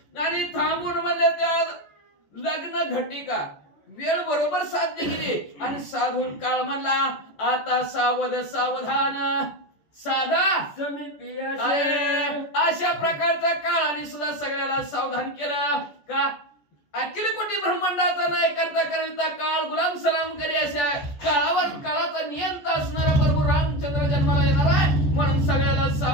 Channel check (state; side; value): late; right; 14 ms